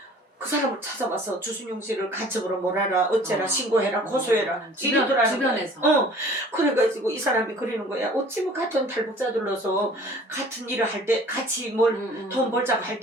그 사람을 찾아와서 주순용 씨를 간첩으로 몰아라 어째라 신고해라 고소해라 이러더라는 주변에서. 그래가지고 이 사람이 그러는 거야. 어찌 뭐 같은 탈북자들로서 같은 일을 할 때 같이 뭘 돈 벌자고 할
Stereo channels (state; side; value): normal; both; correlation 0.49